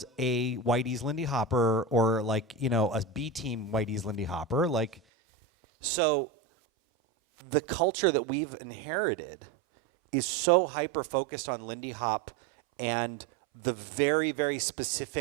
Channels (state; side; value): drops out; left; at 5.0 s